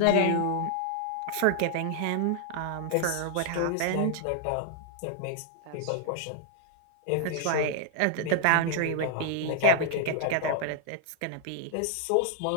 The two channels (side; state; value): both; different; correlation -0.01